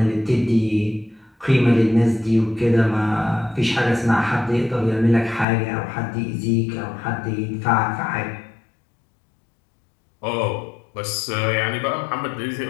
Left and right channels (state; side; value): drops out; right; at 5.5 s